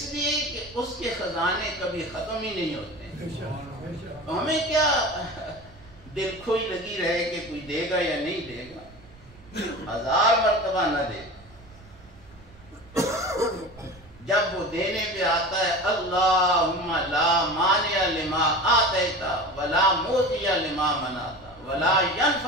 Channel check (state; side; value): noise; right; rumble, 23 dB below the sound